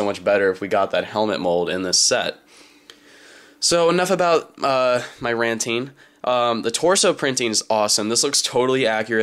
much better if we got that helmet mold in this set. So enough about my ranting. The torso printing is awesome. This looks totally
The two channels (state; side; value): identical; both; correlation 1.00